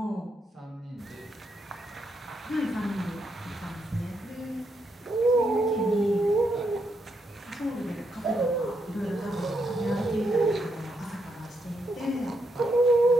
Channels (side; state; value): both; normal; correlation 0.79